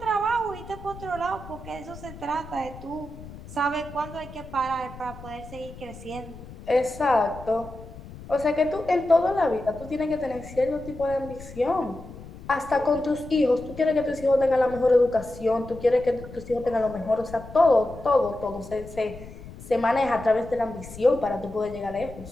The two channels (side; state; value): left; noise; rumble, 15 dB below the sound